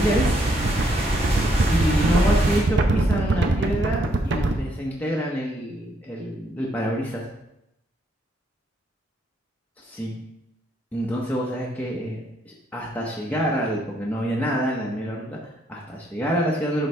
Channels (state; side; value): normal; both; correlation 0.73